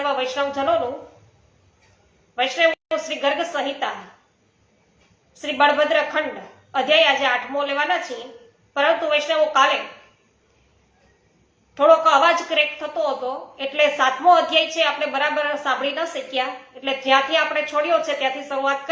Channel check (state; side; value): identical; both; correlation 1.00